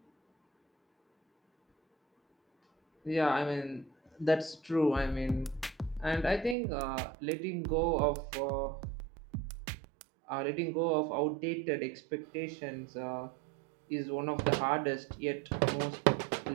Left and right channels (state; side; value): drops out; left; at 6.6 s